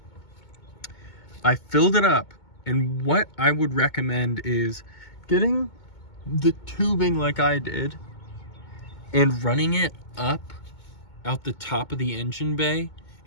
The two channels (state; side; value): late; right; 2.2 ms